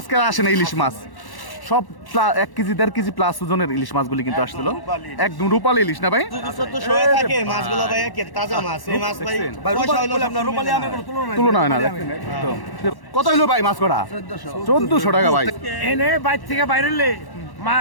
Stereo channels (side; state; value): right; late; 1.1 ms